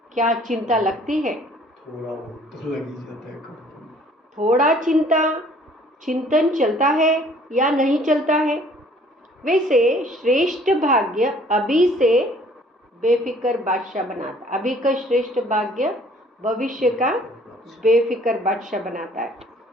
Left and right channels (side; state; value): both; normal; correlation 0.57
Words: क्या चिंता लगती है? थोड़ा बहुत तो लग ही जाता है। थोड़ा चिंतन चलता है या नहीं चलता है। वैसे श्रेष्ठ भाग्य अभी से बेफिक्र बादशाह बनाता। अभी का श्रेष्ठ भाग्य भविष्य का बेफिक्र बादशाह बनाता है।